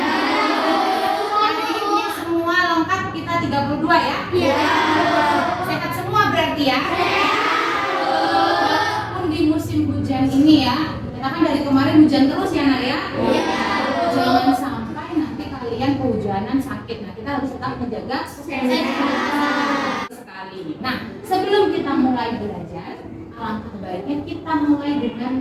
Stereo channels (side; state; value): both; identical; correlation 1.00